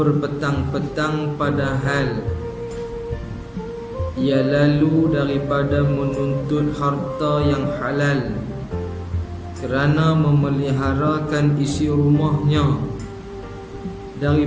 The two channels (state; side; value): identical; both; correlation 1.00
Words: padahal ia lalu daripada menuntut harta yang halal kerana memeliharakan isi rumahnya